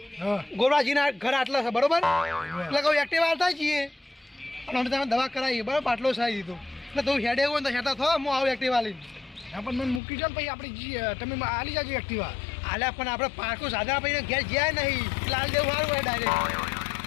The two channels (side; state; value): right; drops out; at 10.0 s